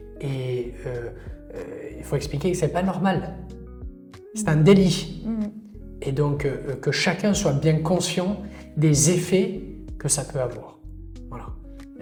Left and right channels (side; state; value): both; identical; correlation 1.00